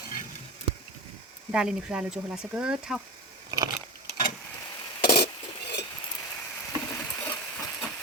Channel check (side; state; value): both; normal; correlation 0.24